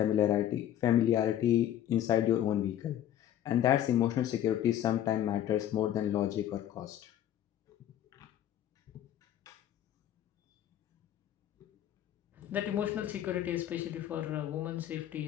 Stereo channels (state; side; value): quieter; right; 11.4 dB